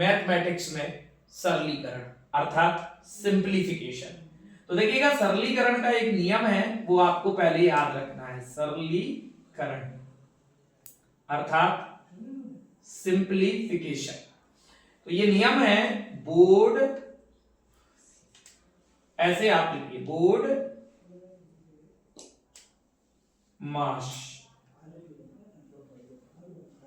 में सरलीकरण अर्थात सिंप्लीफिकेशन। तो देखिएगा, सरलीकरण का एक नियम है, वो आपको पहले याद रखना है। सरलीकरण अर्थात सिंप्लीफिकेशन। तो ये नियम है, बोर्ड ऐसे आप लिखिए, बोर्ड मास।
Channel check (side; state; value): both; identical; correlation 1.00